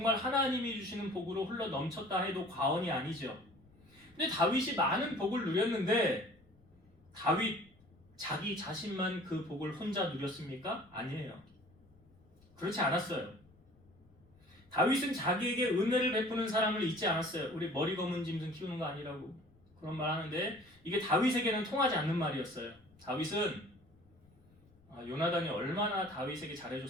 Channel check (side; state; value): left; noise; rumble, 28 dB below the sound